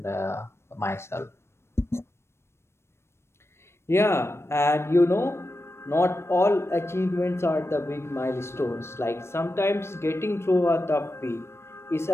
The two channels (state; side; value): late; right; 0.12 ms